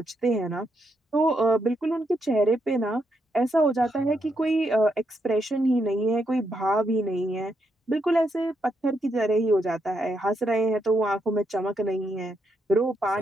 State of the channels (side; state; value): both; normal; correlation 0.80